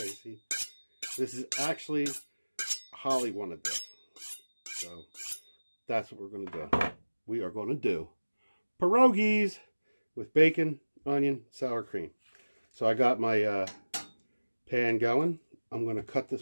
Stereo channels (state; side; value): inverted; both; correlation -1.00